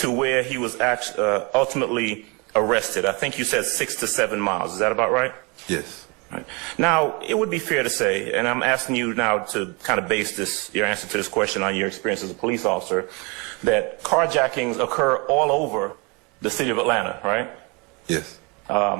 where he was ultimately arrested. I think you said 6 to 7 miles. Is that about right? Yes. Right. Now, it would be fair to say, and I'm asking you now to kind of base your answer to this question on your experience as a police officer, that carjackings occur all over the city of Atlanta, right? Yes.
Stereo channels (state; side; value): quieter; left; 30.0 dB